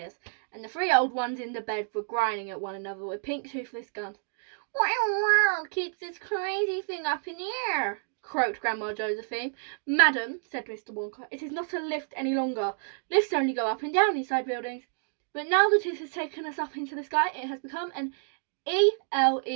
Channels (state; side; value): silent; left; digital silence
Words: and the three old ones in the bed were grinding at one another with pink toothless guns. "What in the world keeps this crazy thing up in the air?" croaked Grandma Josephine. "Madam," said Mr. Wonka, "it is not a lift any longer. Lifts only go up and down inside buildings. But now that it has taken us up into the sky, it has become an